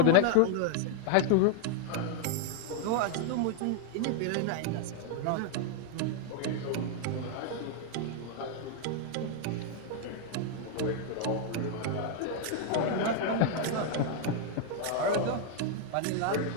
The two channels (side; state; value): both; different; correlation 0.00